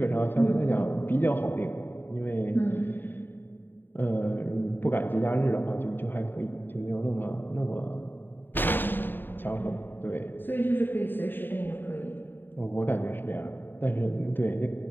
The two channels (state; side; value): late; right; 0.094 ms